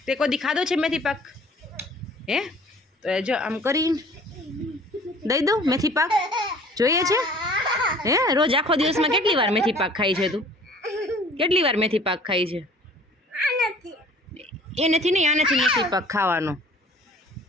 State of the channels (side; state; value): both; normal; correlation 0.50